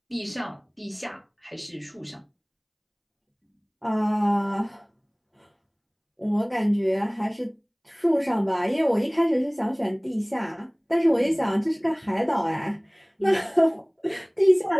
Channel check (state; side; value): identical; both; correlation 1.00